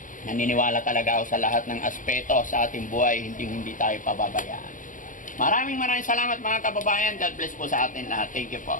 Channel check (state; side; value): late; right; 0.38 ms